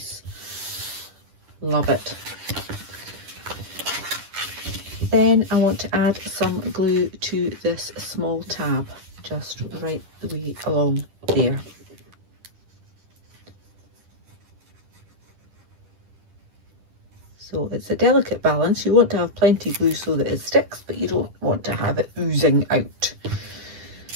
Love it. Then I want to add some glue to this small tab, just right the way along there. So it's a delicate balance. You want to have plenty of glue so that it sticks, but you don't want to have it oozing out.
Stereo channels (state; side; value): late; left; 10 ms